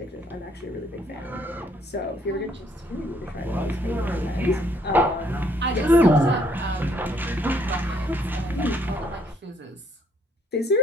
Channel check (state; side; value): normal; both; correlation 0.68